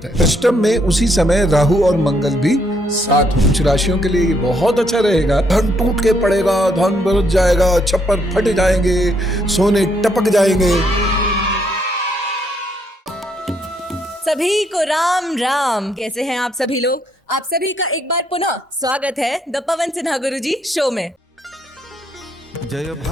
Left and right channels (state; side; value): normal; both; correlation 0.73